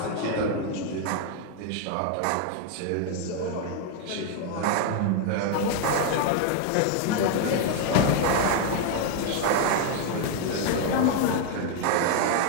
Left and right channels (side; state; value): both; different; correlation 0.00